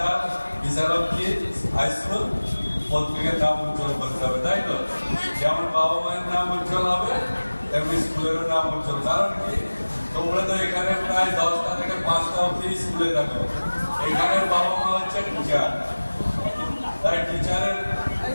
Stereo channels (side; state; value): both; inverted; correlation -1.00